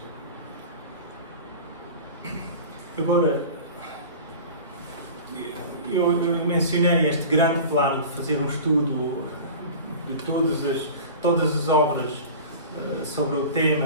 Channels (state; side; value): inverted; both; correlation -0.36